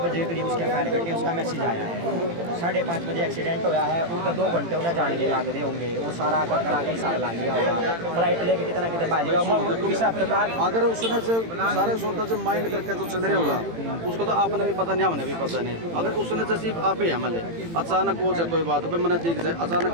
बजे करीब उसके फायर कटी, उसका मैसेज आया है 5:30 बजे एक्सीडेंट होया है, उनका 2 घंटे उन्हें जान के लाग रहे होंगे, वो सारा करा के हिसाब ला लिया होगा, फ्लाइट लेके कितना कितने बाजेगा। अगर उसने से सारे सोचता से माइंड करके तो चल रहे होगा उसको तो आपने भी पता नहीं हमने भी पता नहीं, अगर उसने जैसे आप ही हमले अचानक हो जाए कोई बात पे मैंने देख जाए अचानक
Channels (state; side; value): late; left; 18 ms